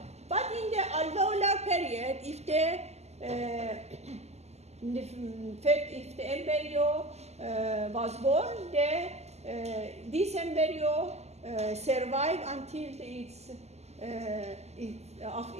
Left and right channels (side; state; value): left; late; 0.32 ms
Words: But in the alveolar period, if the embryo was born, this embryo survive until its